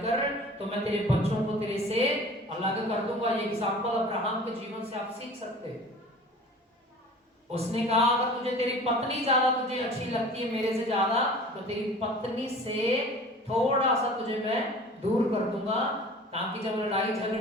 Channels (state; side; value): normal; both; correlation 0.43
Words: तो मैं तेरे बच्चों को तेरे से अलग कर दूंगा। ये एग्जांपल अब्राहम के जीवन से आप सीख सकते हैं। उसने कहा अगर तुझे तेरी पत्नी ज्यादा तुझे अच्छी लगती है मेरे से ज्यादा तो तेरी पत्नी से थोड़ा सा तुझे मैं दूर कर दूंगा ताकि जब लड़ाई